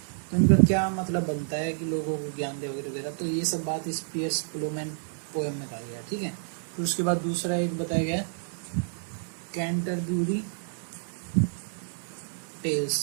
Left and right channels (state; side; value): silent; left; 59 dB below the other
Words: तो इनका क्या मतलब बनता है कि लोगों को ज्ञान दे वगैरह वगैरह। तो ये सब बात इस पियर्स प्लोमैन पोएम में कहा गया, ठीक है। फिर उसके बाद दूसरा एक बताया गया कैंटरब्यूरी